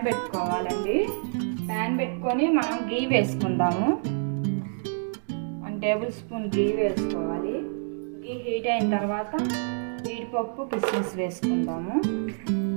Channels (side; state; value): left; silent; digital silence